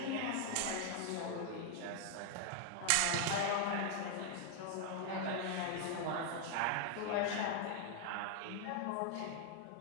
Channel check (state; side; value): different; both; correlation 0.00